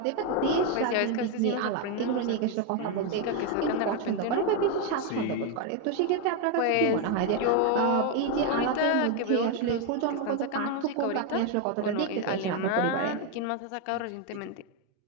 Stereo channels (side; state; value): both; different; correlation 0.01